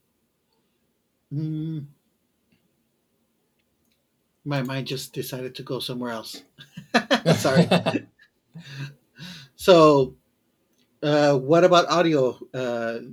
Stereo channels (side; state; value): both; identical; correlation 1.00